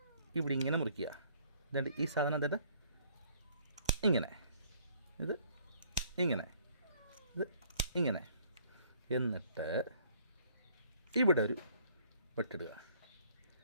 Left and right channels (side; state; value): both; inverted; correlation -0.60